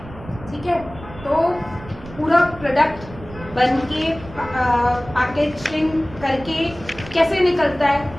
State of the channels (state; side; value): noise; right; rumble, 16 dB below the sound